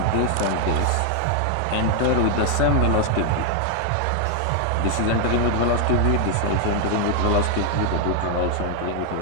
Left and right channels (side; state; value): both; different; correlation 0.00